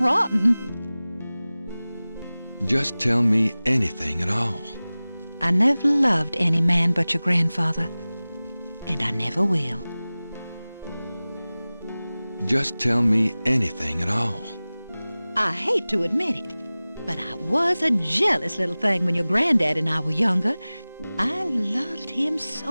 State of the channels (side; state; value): both; inverted; correlation -0.98